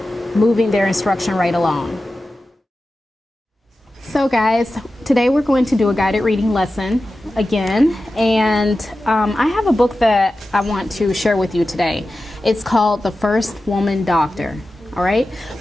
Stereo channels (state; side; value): normal; both; correlation 0.94